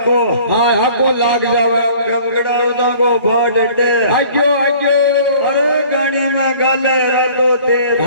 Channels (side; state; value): both; inverted; correlation -0.51